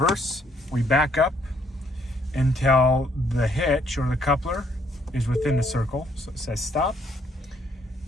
we back up until the hitch or the coupler is within the circle. So it says stop.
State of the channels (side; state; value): both; normal; correlation 0.68